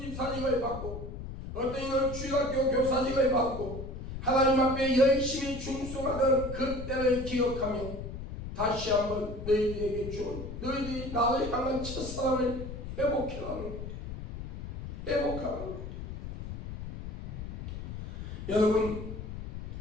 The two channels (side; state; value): left; noise; rumble, 8 dB below the sound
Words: 받고 어떤 이는 주일학교 교사직을 받고 하나님 앞에 열심히 충성하던 그때를 기억하며 다시 한번 너희들에게 준 너희들이 나를 향한 첫사랑을 회복하라는 거예요. 회복하라는 거예요. 여러분